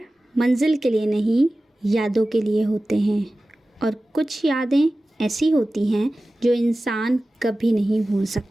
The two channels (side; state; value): both; normal; correlation 0.96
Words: मंजिल के लिए नहीं, यादों के लिए होते हैं और कुछ यादें ऐसी होती हैं जो इंसान कभी नहीं भूल